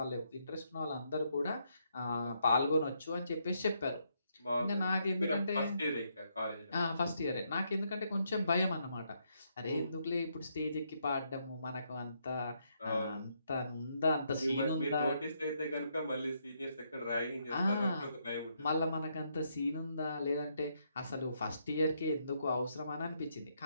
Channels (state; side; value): inverted; both; correlation -0.76